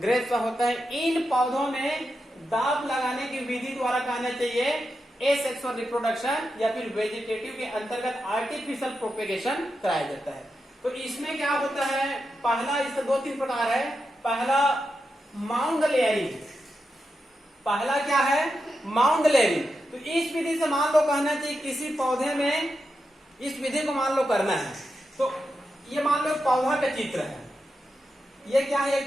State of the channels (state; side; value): normal; both; correlation 0.88